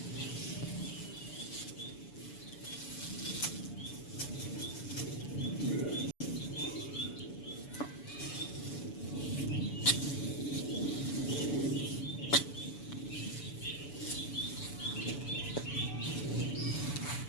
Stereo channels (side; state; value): right; late; 7.0 ms